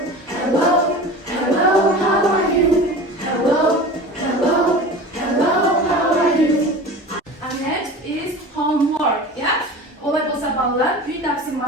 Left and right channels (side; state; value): both; normal; correlation 0.35